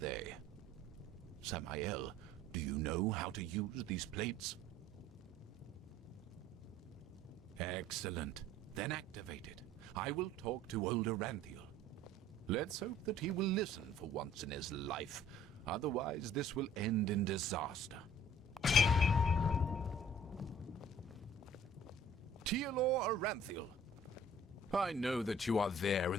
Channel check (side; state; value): both; normal; correlation 0.53